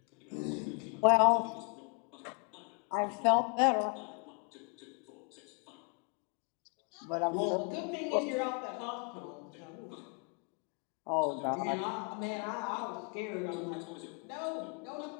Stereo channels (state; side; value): quieter; right; 34.9 dB